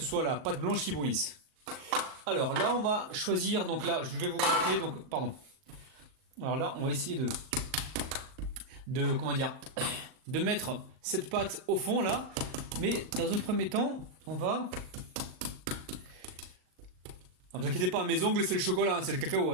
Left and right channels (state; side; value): late; left; 38 ms